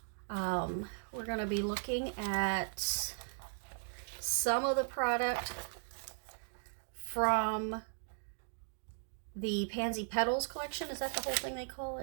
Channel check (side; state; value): left; silent; digital silence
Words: We're going to be looking at some of the product from the Pansy Petals collection. Is that the whole thing they call